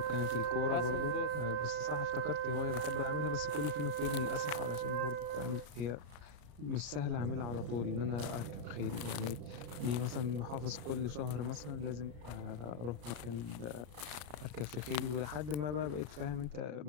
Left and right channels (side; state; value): left; late; 34 ms